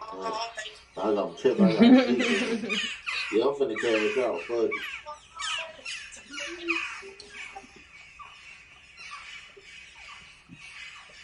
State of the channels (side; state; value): both; identical; correlation 1.00